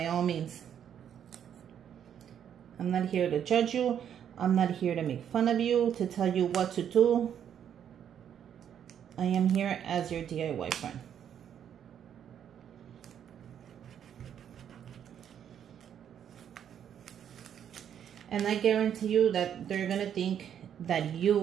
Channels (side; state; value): left; quieter; 9.1 dB